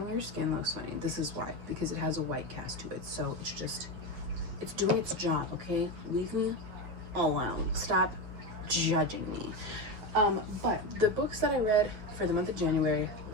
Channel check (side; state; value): left; late; 8.6 ms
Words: your skin looks funny, this is why. Because it has a white cast to it. So it's doing its job, okay? Leave me alone. Stop judging me. But the books that I read for the month of January,